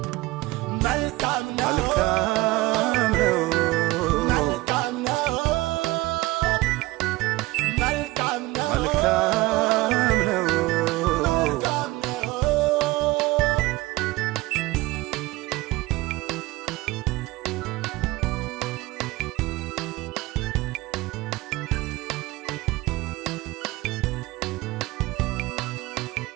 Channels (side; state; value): left; quieter; 20.2 dB